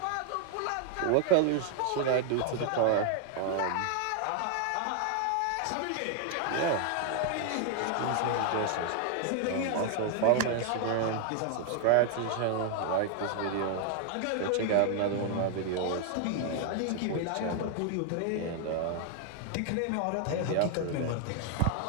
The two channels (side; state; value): both; different; correlation 0.00